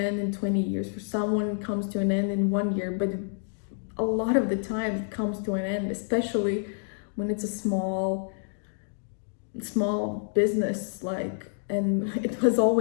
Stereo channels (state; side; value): silent; right; digital silence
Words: in 20 years, for someone it comes to an end in 1 year, but a lot of the time it comes to an end, especially when it's a small business. Like, and it has